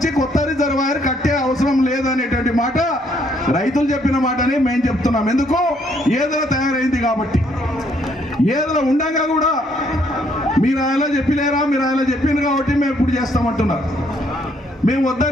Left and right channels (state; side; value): normal; both; correlation 0.68